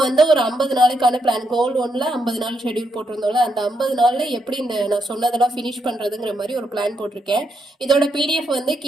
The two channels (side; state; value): both; normal; correlation 0.79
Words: வந்து ஒரு 50 நாளைக்கான பிளான், கோல் 1ல் 50 நாள் ஷெடியூல் போட்டிருந்தோம்ல, அந்த 50 நாளில் எப்படி இந்த நான் சொன்னதெல்லாம் ஃபினிஷ் பண்ணுறதுங்கிற மாதிரி ஒரு பிளான் போட்டிருக்கேன். இதோட பிடிஎஃப் வந்து